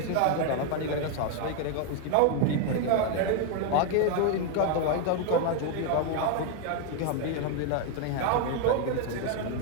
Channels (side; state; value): both; different; correlation 0.01